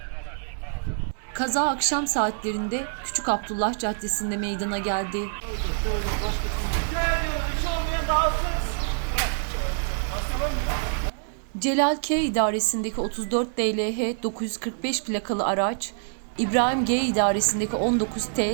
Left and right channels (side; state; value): left; silent; digital silence